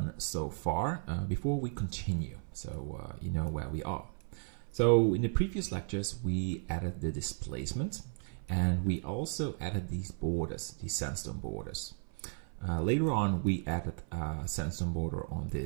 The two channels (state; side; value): silent; left; 55 dB below the other